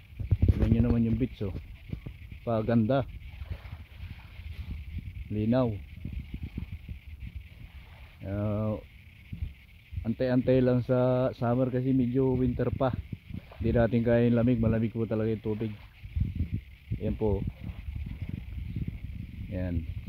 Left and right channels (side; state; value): both; identical; correlation 1.00